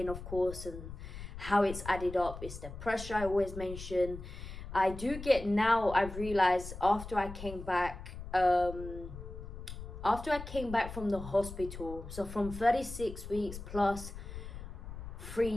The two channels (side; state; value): left; noise; rumble, 10 dB below the sound